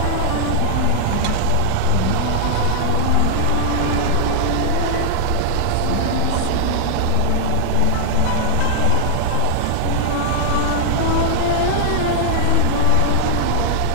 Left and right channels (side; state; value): both; different; correlation -0.01